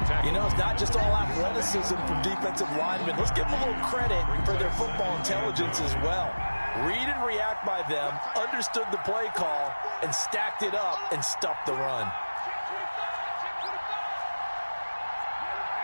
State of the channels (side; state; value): both; inverted; correlation -1.00